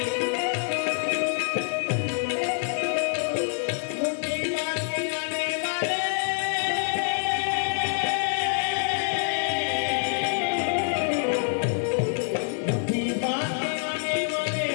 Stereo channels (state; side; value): silent; right; digital silence